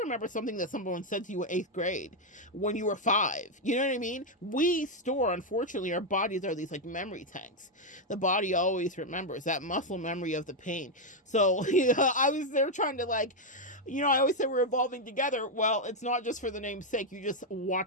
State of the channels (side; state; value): both; normal; correlation 0.02